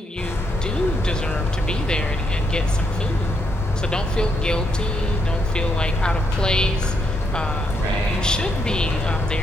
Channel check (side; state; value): both; normal; correlation 0.78